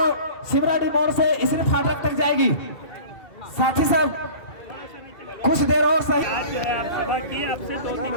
शिवराड़ी मोड़ से इसरी फाटक तक जाएगी। साथी साहब कुछ देर और सही सभा की आपसे 2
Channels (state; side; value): late; right; 2.7 ms